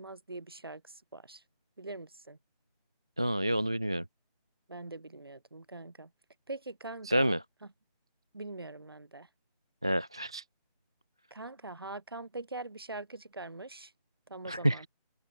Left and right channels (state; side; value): inverted; both; correlation -0.88